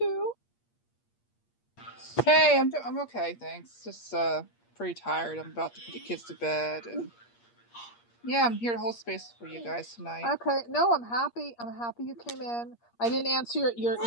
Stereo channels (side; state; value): right; late; 8.5 ms